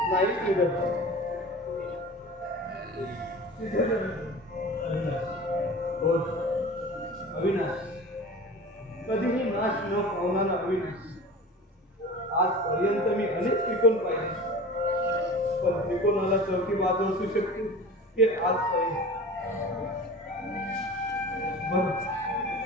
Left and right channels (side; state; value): both; normal; correlation 0.36